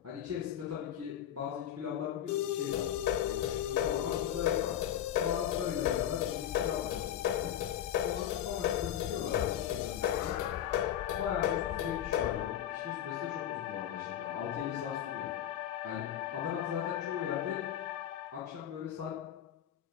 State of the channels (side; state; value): right; quieter; 10.7 dB